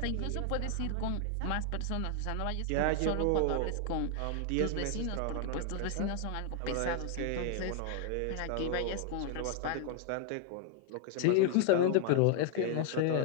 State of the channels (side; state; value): both; different; correlation 0.00